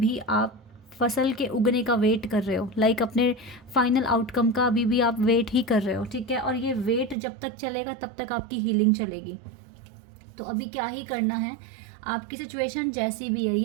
आप फसल के उगने का वेट कर रहे हो, लाइक अपने फाइनल आउटकम का अभी भी आप वेट ही कर रहे हो, ठीक है, और ये वेट जब तक चलेगा तब तक आपकी हीलिंग चलेगी। तो अभी क्या ही करना है, आपकी सिचुएशन जैसी भी है,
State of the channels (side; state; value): left; drops out; at 7.2 s